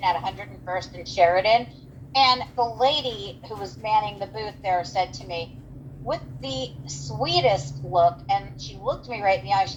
at 101st and Sheridan, and the lady who was manning the booth there said to me with the sweetest look, and she looked me right in the eye, she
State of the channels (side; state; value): both; identical; correlation 1.00